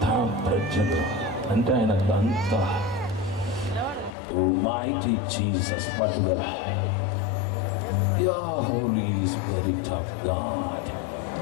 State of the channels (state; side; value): drops out; right; at 4.1 s